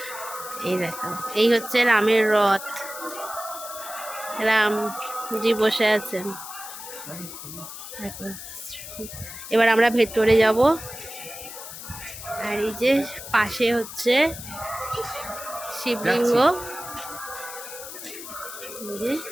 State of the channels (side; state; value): left; noise; hiss, 11 dB below the sound